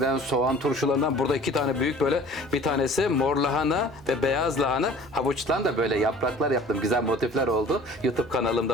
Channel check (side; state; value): right; noise; hum, 22 dB below the sound